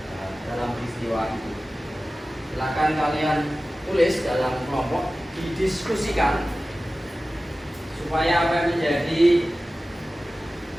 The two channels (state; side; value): normal; both; correlation 0.96